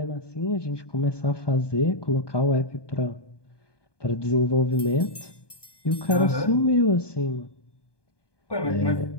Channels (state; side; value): late; right; 1.2 ms